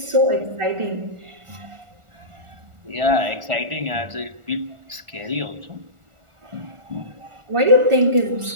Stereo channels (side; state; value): left; late; 1.4 ms